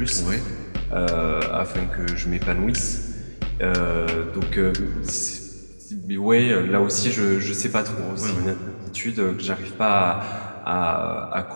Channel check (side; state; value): both; inverted; correlation -1.00